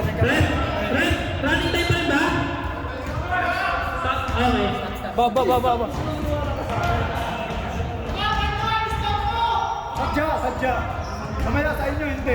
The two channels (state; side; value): identical; both; correlation 1.00